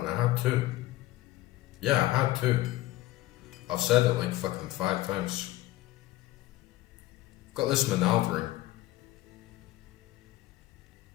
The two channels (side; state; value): right; quieter; 16.8 dB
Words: I had two. Yeah, I had two. I've said it like fucking 5 times. Got this Manald ring.